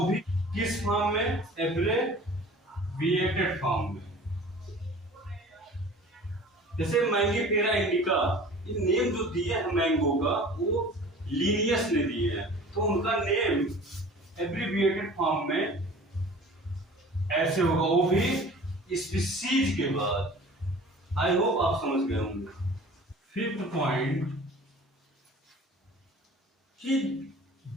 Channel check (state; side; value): normal; both; correlation 0.44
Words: भी किस फॉर्म में? एब्रिविएटेड फॉर्म में। जैसे मैंगीफेरा इंडिका, ये नेम जो दिए हैं मैंगो का, वो लीनियस ने दिए हैं, तो उनका नेम एब्रिविएटेड फॉर्म में ऐसे होगा, वो भी स्पीसीज के बाद। आई होप आप समझ गए होंगे। फिफ्थ पॉइंट कि